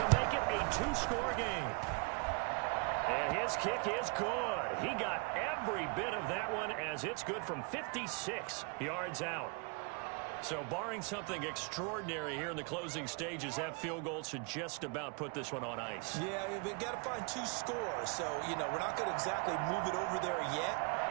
make it a 2-score game. And his kick is good. He got every bit of that one as it's good from 56 yards out. So barring something extraordinary here in the closing stages, that field goal should just about put this one on ice. Yeah, we've got to find 2 scores. So, you know, we're not going to exactly move it over there yet.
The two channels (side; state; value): left; quieter; 34.2 dB